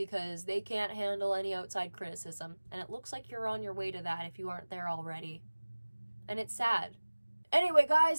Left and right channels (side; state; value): both; inverted; correlation -1.00